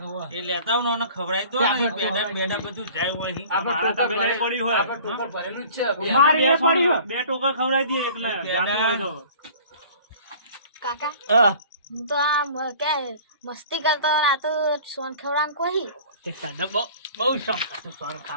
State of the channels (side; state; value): both; inverted; correlation -0.47